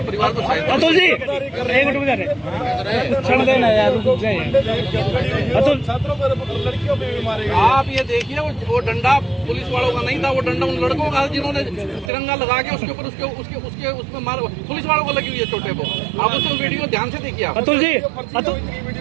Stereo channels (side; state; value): left; drops out; at 12.1 s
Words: परिवार को सहायता। अतुल जी, एक मिनट में छोड़ देना यार, अतुल, लड़कियों पे भी मारे। आप ये देखिए, वो डंडा पुलिस वालों का नहीं था, वो डंडा उन लड़कों का, जिन्होंने तिरंगा लगा के उसके ऊपर उसके उसमें मार, पुलिस वालों को लगी हुई है चोटे को। आप उसमें वीडियो ध्यान से देखिए। अतुल जी,